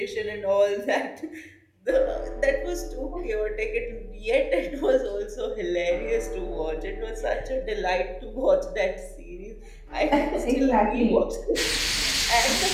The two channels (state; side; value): identical; both; correlation 1.00